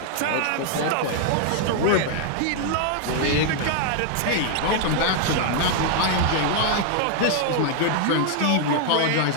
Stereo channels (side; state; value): both; different; correlation 0.00